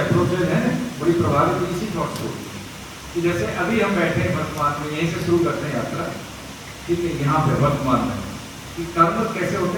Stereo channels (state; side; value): identical; both; correlation 1.00